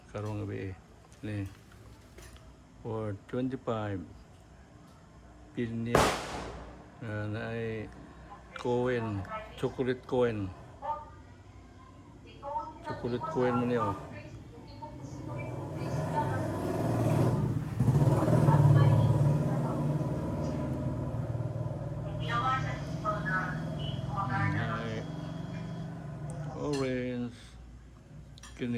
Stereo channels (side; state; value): both; identical; correlation 1.00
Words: karong gabi. Ni for 25 pinya na ay Cohen, chocolate Cohen. Chocolate Cohen mo niyo. Ay orange